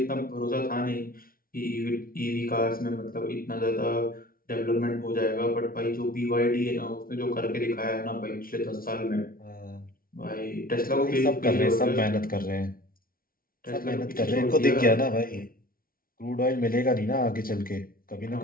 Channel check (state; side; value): late; right; 0.43 ms